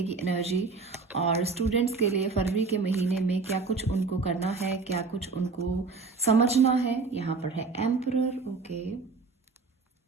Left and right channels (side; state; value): left; quieter; 4.3 dB